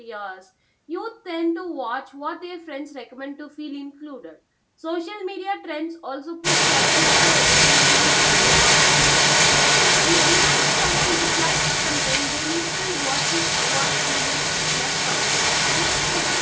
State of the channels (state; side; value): identical; both; correlation 1.00